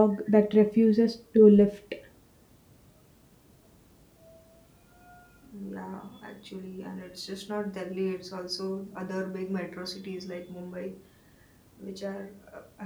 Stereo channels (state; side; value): identical; both; correlation 1.00